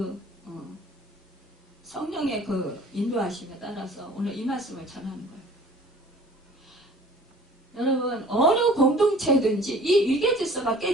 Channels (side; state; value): both; normal; correlation 0.49